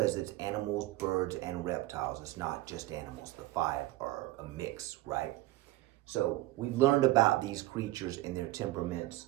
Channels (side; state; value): left; quieter; 17.4 dB